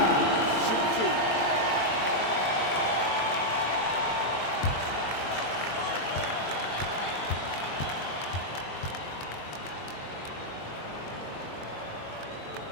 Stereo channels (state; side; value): late; right; 22 ms